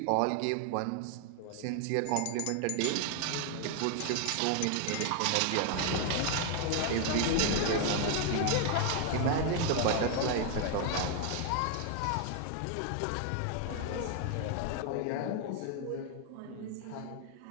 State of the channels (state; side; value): different; both; correlation 0.00